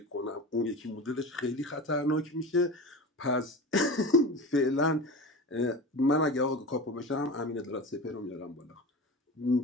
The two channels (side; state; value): both; normal; correlation 0.30